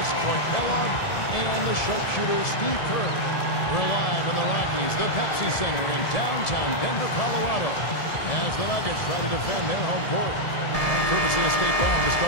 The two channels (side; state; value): right; late; 1.7 ms